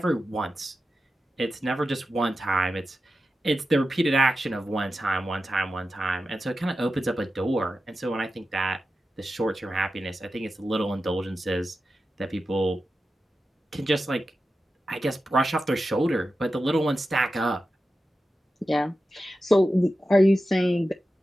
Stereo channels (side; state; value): both; normal; correlation 0.92